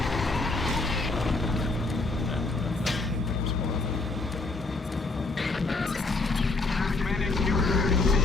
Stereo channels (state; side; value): quieter; right; 3.5 dB